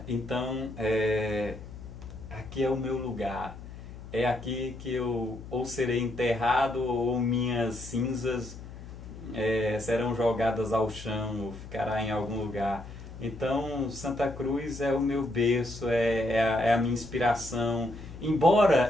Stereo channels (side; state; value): left; noise; hum, 13 dB below the sound